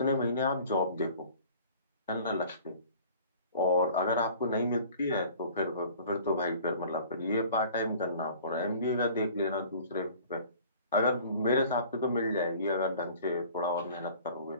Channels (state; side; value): inverted; both; correlation -0.47